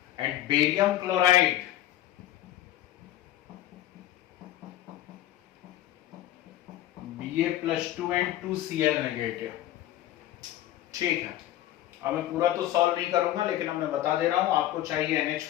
and barium chloride Ba+2 and 2Cl negative, ठीक है। अब मैं पूरा तो सॉल्व नहीं करूंगा, लेकिन अब मैं बता दे रहा हूं आपको चाहिए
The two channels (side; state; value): right; quieter; 13.5 dB